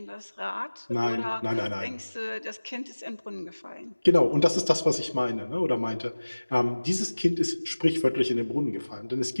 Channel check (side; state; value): both; inverted; correlation -1.00